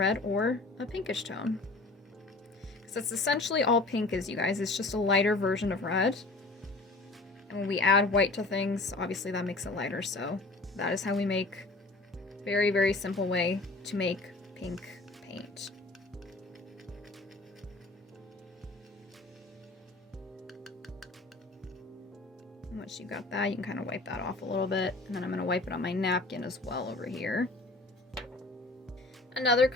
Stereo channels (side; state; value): right; quieter; 3.1 dB